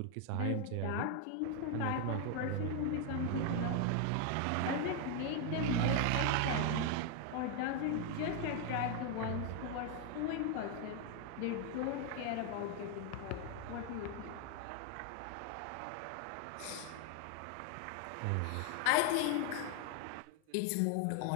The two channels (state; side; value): different; both; correlation 0.01